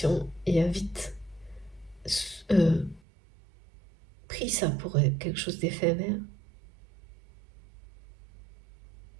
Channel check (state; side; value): drops out; left; at 3.0 s